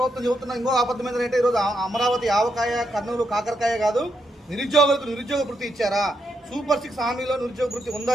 చెబుతున్న ఇంకో అబద్ధం ఏంటంటే ఈరోజు అమరావతి ఆవకాయ, కర్నూలు కాకరకాయ కాదు, నిరుద్యోగులకు నిరుద్యోగ వృత్తి ఇచ్చారా? సూపర్ 6 హామీలో నిరుద్యోగ వృత్తి ఉందా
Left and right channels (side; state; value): both; normal; correlation 0.81